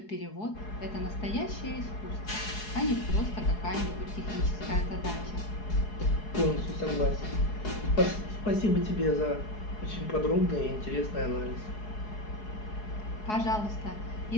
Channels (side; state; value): right; late; 4.7 ms